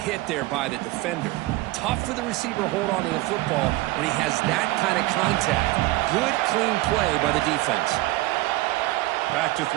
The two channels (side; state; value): left; quieter; 19.0 dB